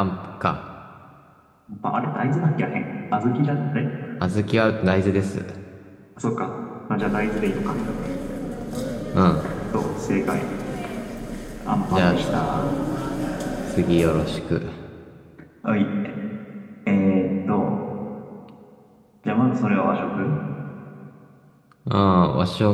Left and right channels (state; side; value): identical; both; correlation 1.00